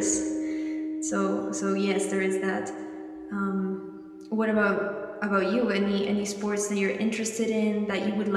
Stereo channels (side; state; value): both; identical; correlation 1.00